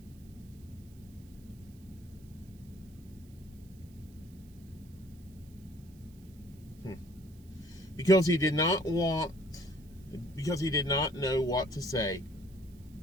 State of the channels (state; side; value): noise; right; hiss, 27 dB below the sound